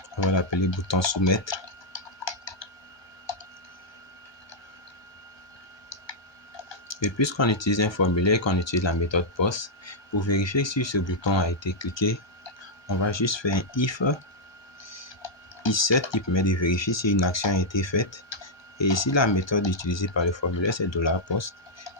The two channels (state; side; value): late; right; 1.2 ms